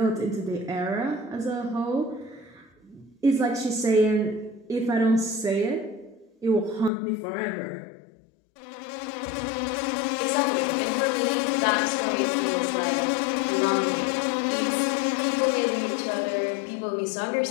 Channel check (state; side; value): drops out; right; at 6.9 s